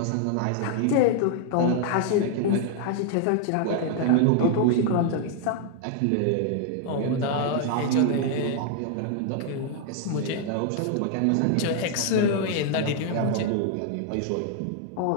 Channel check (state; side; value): different; both; correlation 0.00